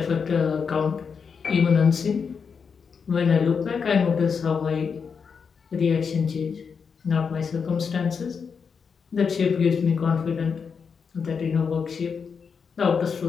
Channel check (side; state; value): right; quieter; 6.0 dB